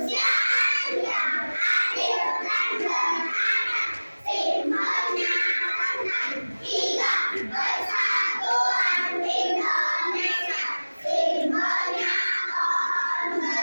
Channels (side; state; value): both; inverted; correlation -1.00